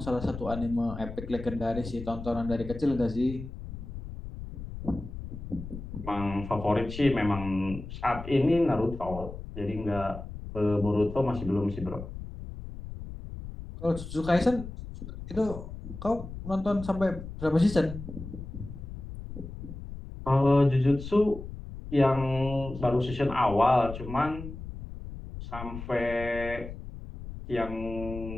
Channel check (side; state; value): left; noise; rumble, 10 dB below the sound